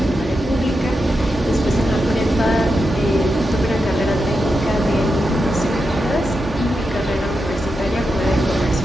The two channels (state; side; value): normal; both; correlation 0.88